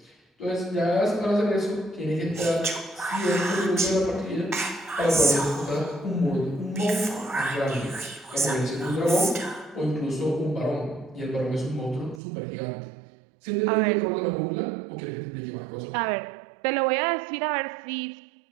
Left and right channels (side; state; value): left; drops out; at 12.2 s